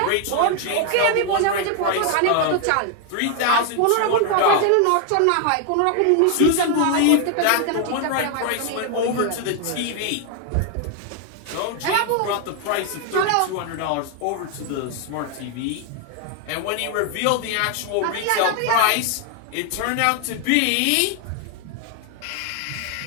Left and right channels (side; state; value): both; different; correlation 0.01